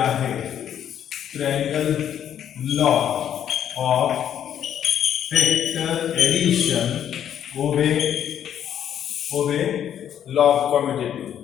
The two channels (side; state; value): right; quieter; 9.8 dB